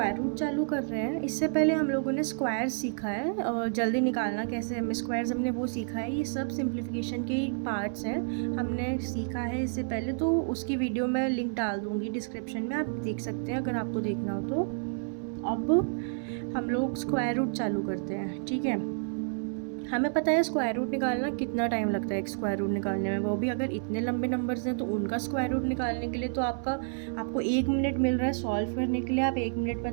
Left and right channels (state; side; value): silent; left; 58 dB below the other